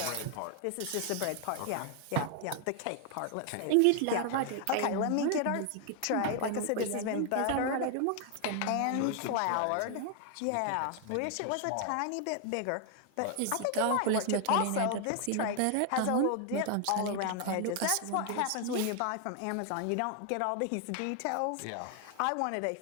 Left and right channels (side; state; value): both; different; correlation 0.00